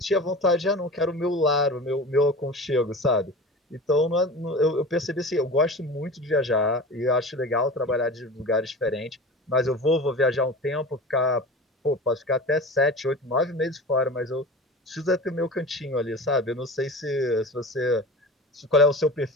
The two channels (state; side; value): normal; both; correlation 0.34